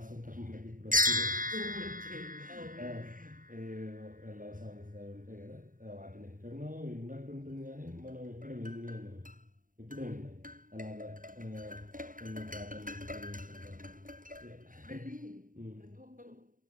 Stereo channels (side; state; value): left; late; 0.39 ms